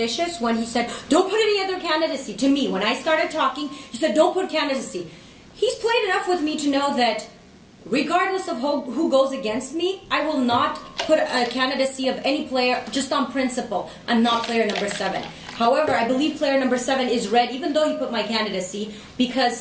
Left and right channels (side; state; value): both; identical; correlation 1.00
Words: when he said, don't put any other candidacy. To me, when I started talking, he said, don't put candidacy. He's played enough with me to know that regardless of who goes against me, I will not put a candidacy of any player just on principle. I'm not player number 7. However, I believe player number 7 is red, even though he put my candidacy,